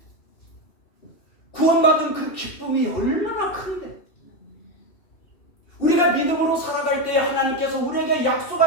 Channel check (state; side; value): late; right; 2.7 ms